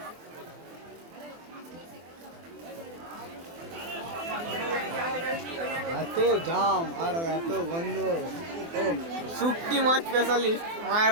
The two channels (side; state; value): left; late; 24 ms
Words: এত জাম আর এত গন্ধ শুটকি মাছ স্পেশালিস্ট